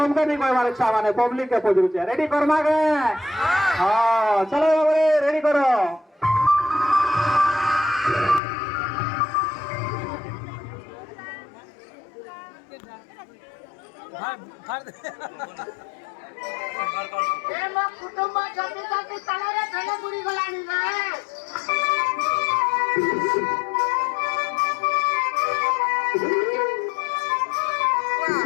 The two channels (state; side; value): drops out; right; at 8.4 s